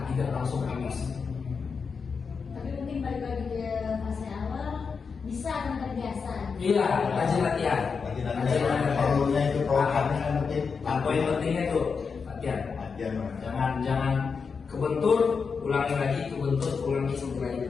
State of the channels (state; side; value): quieter; right; 5.5 dB